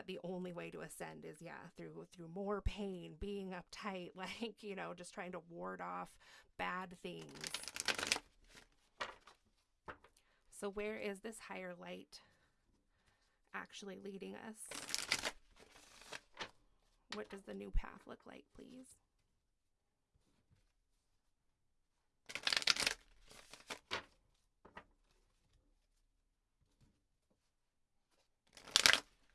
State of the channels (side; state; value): both; identical; correlation 1.00